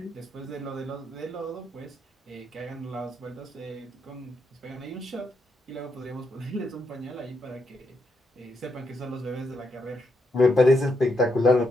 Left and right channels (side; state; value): both; normal; correlation 0.80